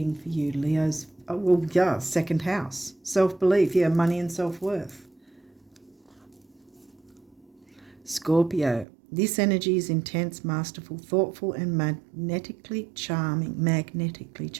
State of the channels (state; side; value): drops out; left; at 8.8 s